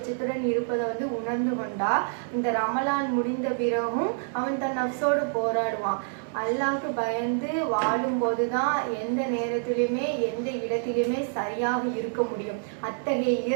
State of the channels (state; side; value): silent; left; 60 dB below the other